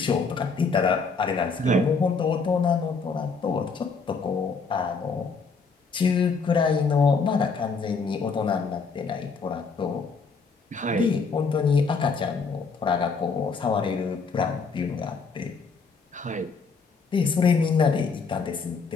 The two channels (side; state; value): right; quieter; 4.8 dB